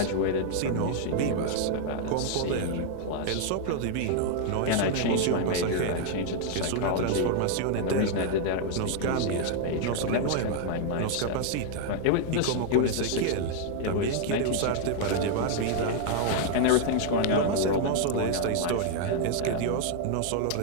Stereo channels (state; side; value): different; both; correlation 0.00